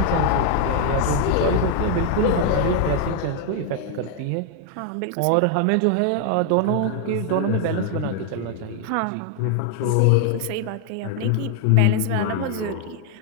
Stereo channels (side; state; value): both; different; correlation 0.00